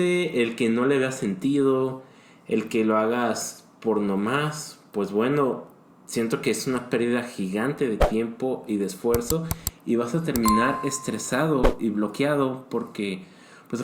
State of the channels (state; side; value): identical; both; correlation 1.00